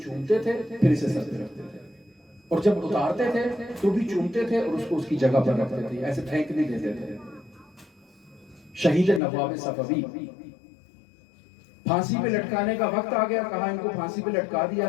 چومتے تھے، پھر اسے سر پہ رکھتے تھے، اور جب اتارتے تھے تو بھی چومتے تھے اور اس کو اس کی جگہ پر رکھتے تھے، ایسے پھینک نہیں دیتے تھے۔ شہید نواب صفوی، پھانسی پہ لٹکانے کا وقت آ گیا، کہا ان کو پھانسی پہ لٹکا دیا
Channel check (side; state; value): right; drops out; at 9.2 s